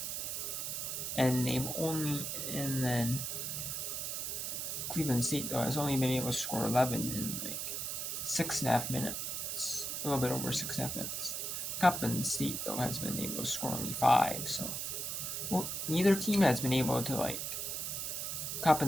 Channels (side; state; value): right; noise; hiss, 3 dB below the sound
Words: And then Cleveland State though has only been able to score 11 in like 6.5 minutes, a little bit over 6.5 minutes. Coppin State though has been able to score only 5, so neither team has been able to